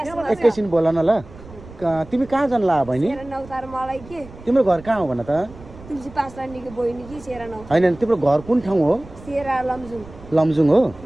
एकैछिन बोल न ल। तिमी कहाँ जान ला बहिनी? तिम्रो घर कहाँ हो भन त? होइन तिम्रो घर कुन ठाउँ हो? लमजुङ हो?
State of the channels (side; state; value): right; noise; rumble, 19 dB below the sound